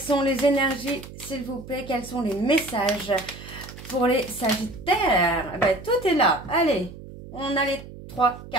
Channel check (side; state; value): right; noise; hum, 15 dB below the sound